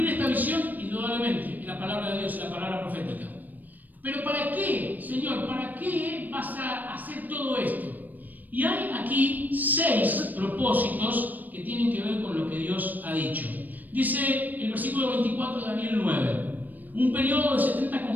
esta visión indudablemente en la palabra de Dios, en la palabra profética. Pero ¿para qué, Señor? ¿Para qué vas a hacer todo esto? Y hay aquí 6 propósitos que tienen que ver con lo que Dios ha dicho. Dice el versículo 24 de Daniel 9. Un periodo de 70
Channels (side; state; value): left; late; 0.085 ms